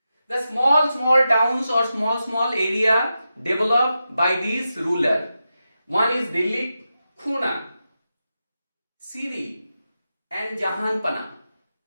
The small towns or small area developed by these rulers. One is Delhi, Khuna, Siri and Jahanpana.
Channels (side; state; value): both; inverted; correlation -0.90